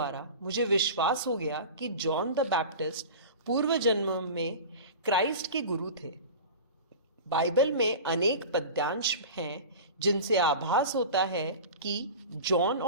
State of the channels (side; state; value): both; inverted; correlation -0.33